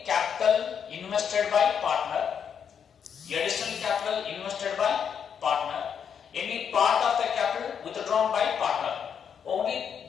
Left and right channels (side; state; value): right; quieter; 7.6 dB